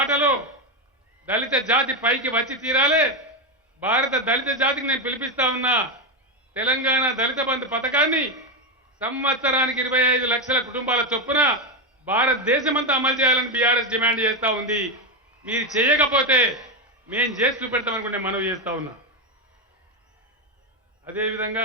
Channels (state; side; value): normal; both; correlation 0.09